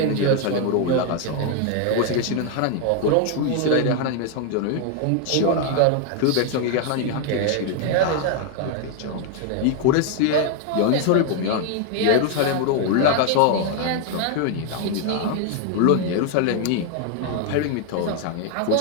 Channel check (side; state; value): both; different; correlation 0.00